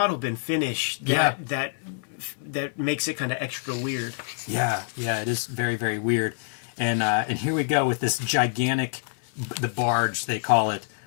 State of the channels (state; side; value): silent; right; 61 dB below the other